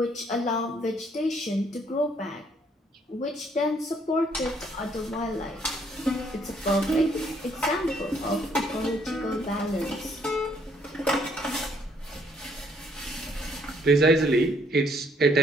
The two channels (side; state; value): both; normal; correlation 0.67